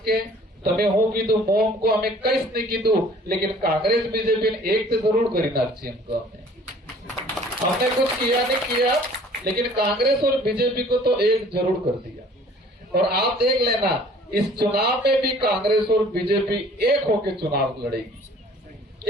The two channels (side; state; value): both; normal; correlation 0.52